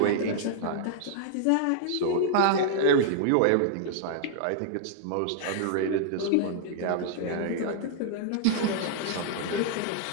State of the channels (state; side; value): different; both; correlation -0.01